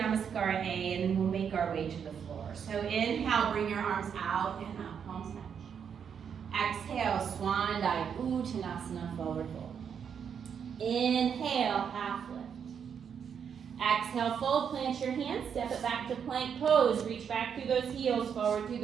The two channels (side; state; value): left; quieter; 7.4 dB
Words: Namaskara A, and then we'll make our way to the floor. So inhale, bring your arms out and up, palms touch. Exhale, Swan Dive, Uttanasana, forward fold. Inhale, half lift. Exhale, fold, plant your hands, step it back to plank pose. Reach back through those heels, forward through